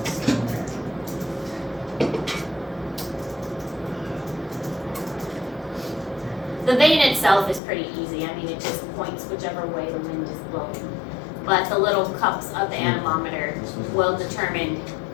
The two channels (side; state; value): right; drops out; at 7.6 s